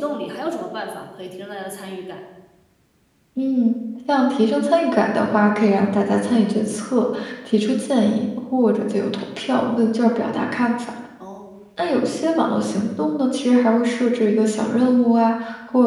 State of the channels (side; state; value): both; identical; correlation 1.00